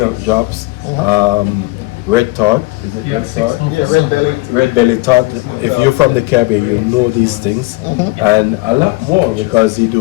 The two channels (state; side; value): quieter; right; 21.8 dB